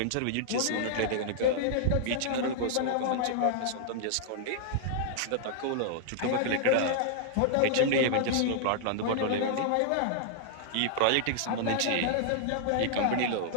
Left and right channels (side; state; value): both; different; correlation -0.01